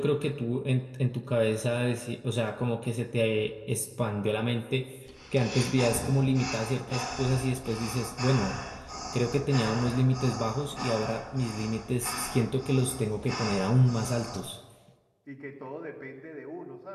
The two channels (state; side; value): identical; both; correlation 1.00